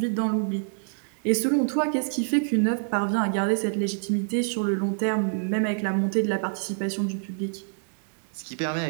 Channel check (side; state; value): left; silent; digital silence